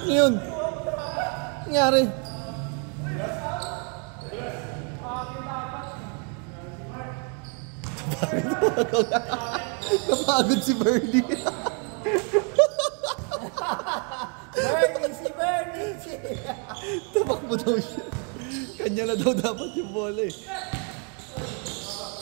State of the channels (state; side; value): quieter; left; 38.4 dB